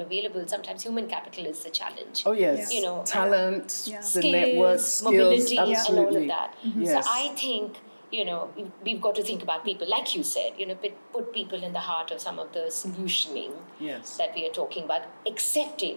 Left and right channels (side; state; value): both; inverted; correlation -1.00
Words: available, sometimes human capital is the challenge. Oh, yes. You know, talent, the skills, network, mobility, skills, and all of that. Yes. So I think, you know, we've got to think about people, like you said, you know, put people in the heart of some of the solutioning that we are talking about,